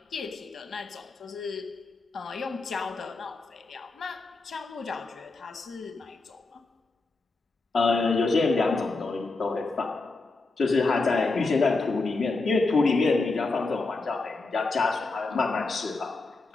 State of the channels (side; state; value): right; quieter; 3.6 dB